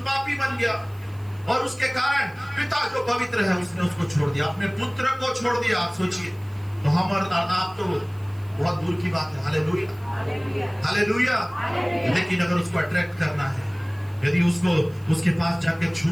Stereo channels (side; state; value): right; noise; hiss, 28 dB below the sound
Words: बन गया, और उसके कारण पिता जो पवित्र है उसने उसको छोड़ दिया, अपने पुत्र को छोड़ दिया। आप सोचिए, तो हम और आप तो बहुत दूर की बात है। Hallelujah, hallelujah. लेकिन अगर उसको अट्रैक्ट करना है, यदि उसको उसके पास जाके